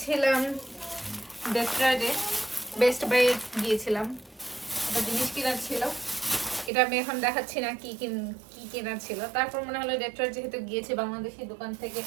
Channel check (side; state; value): left; drops out; at 6.7 s